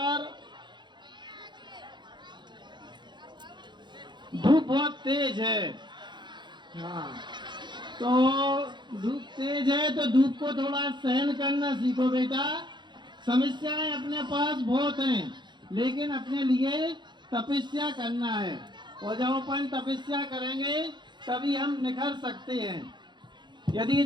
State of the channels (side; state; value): left; late; 0.22 ms